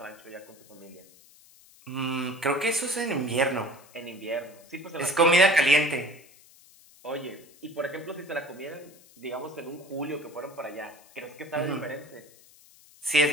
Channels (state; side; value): noise; left; hiss, 25 dB below the sound